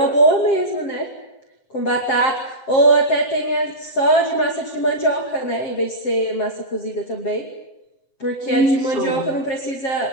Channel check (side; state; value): right; late; 7.6 ms